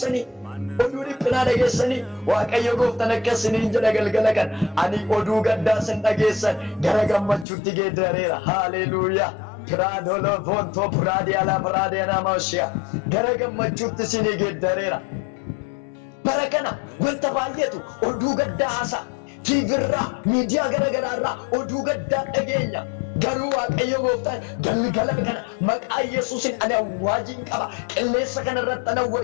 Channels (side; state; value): right; drops out; at 7.5 s